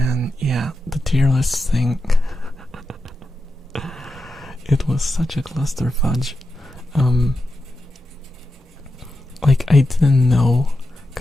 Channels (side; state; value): both; normal; correlation 0.89